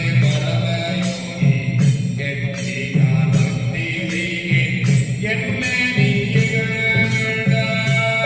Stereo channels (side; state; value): both; identical; correlation 1.00